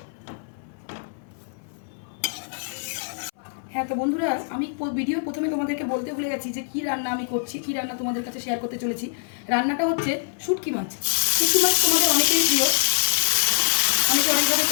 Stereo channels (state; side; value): silent; right; 58 dB below the other